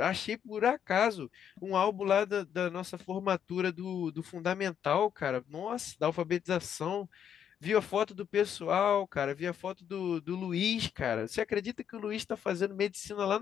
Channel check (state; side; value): quieter; right; 8.8 dB